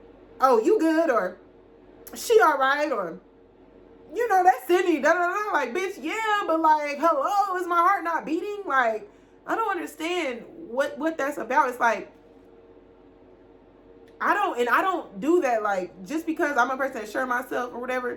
oh, you good, or she all right, or, you know, that's Sydney, da da da. Like, bitch, yeah, but, like, hello, is my heart not beating? Like, I don't understand what that's about. It's like, I don't do that. Like, just because I'm a person that sure myself or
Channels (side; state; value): both; identical; correlation 1.00